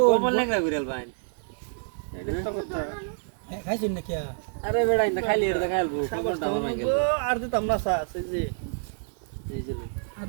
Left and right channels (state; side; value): silent; left; digital silence